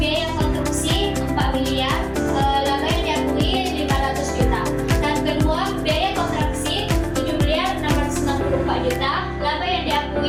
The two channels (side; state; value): both; identical; correlation 1.00